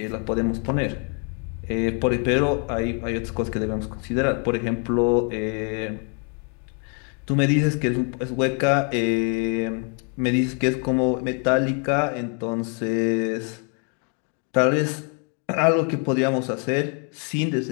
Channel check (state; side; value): quieter; right; 39.7 dB